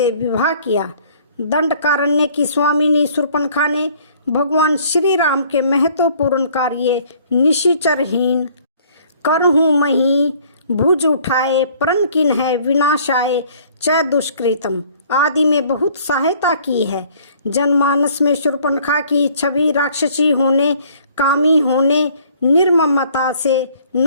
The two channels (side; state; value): both; inverted; correlation -0.57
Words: विवाह किया। दंडकारण्य की स्वामिनी शूर्पणखा ने भगवान श्री राम के महत्वपूर्ण कार्य निशिचरहीन करहूँ मही भुज उठाए प्रण किन है विनाशाय च दुष्कृतम आदि में बहुत सहायता की है। जनमानस में शूर्पणखा की छवि राक्षसी होने, कामी होने, निर्ममता से